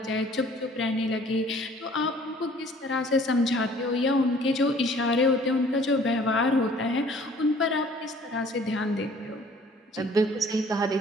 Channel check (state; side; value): normal; both; correlation 0.54